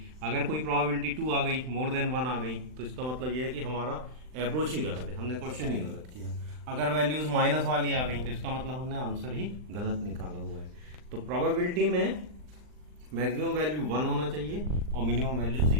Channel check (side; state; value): left; late; 39 ms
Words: अगर कोई प्रोबेबिलिटी 2 आ गई, मोर देन 1 आ गई, तो इसका मतलब ये है कि हमारा अप्रोच ही गलत है, हमने क्वेश्चन ही गलत किया। अगर वैल्यूज माइनस वाली आ गई तो इसका मतलब हमने आंसर ही गलत निकाला हुआ है। तो प्रोबेबिलिटी में मैक्सिमम वैल्यू 1 होना चाहिए और मिनिमम वैल्यू